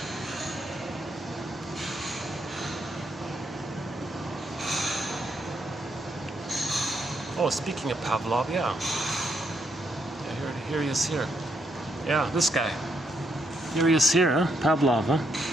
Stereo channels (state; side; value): normal; both; correlation 0.76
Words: Oh, speaking of Pavlov, yeah. Yeah, here he is here. Yeah, this guy. Here he is here, huh? Pavlov, huh?